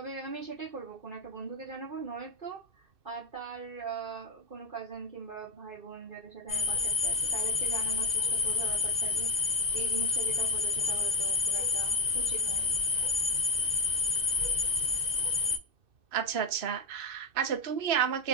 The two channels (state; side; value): late; left; 2.6 ms